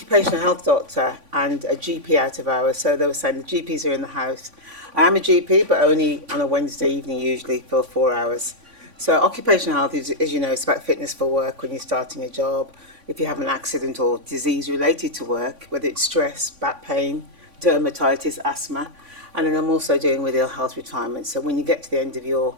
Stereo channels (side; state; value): left; late; 3.5 ms